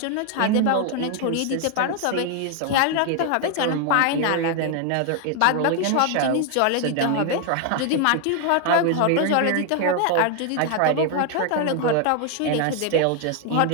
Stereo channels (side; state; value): both; different; correlation 0.00